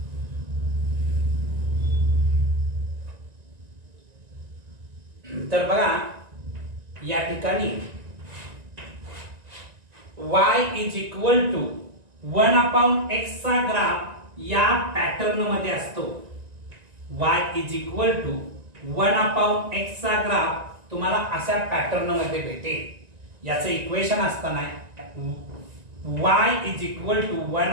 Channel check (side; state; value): left; late; 1.9 ms